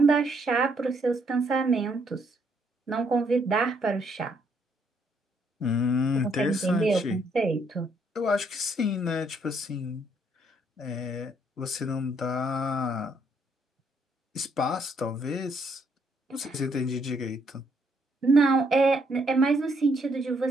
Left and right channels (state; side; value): normal; both; correlation 0.71